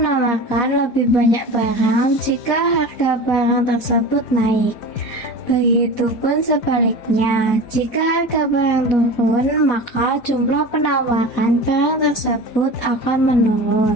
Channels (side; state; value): right; late; 4.2 ms